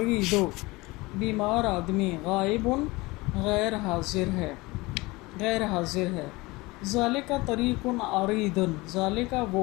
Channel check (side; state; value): right; quieter; 22.5 dB